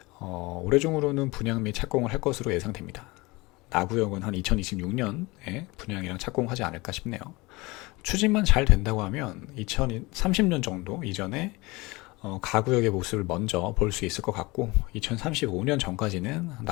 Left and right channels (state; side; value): quieter; right; 23.2 dB